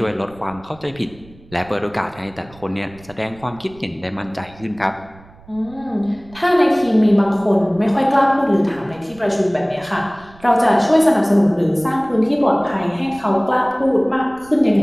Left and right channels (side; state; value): right; noise; rumble, 23 dB below the sound